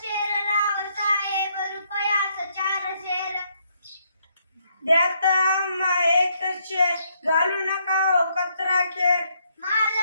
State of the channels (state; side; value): inverted; both; correlation -0.73